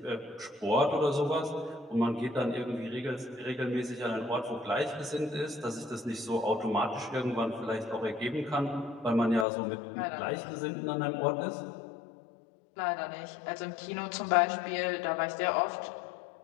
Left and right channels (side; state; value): right; drops out; at 9.5 s